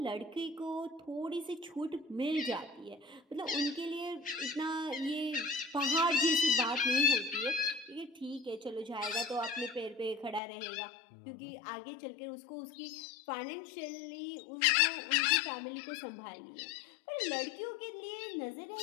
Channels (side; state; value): right; drops out; at 10.4 s